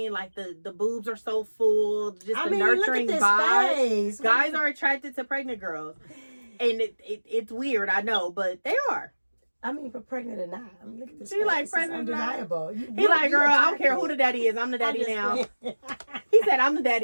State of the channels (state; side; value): inverted; both; correlation -1.00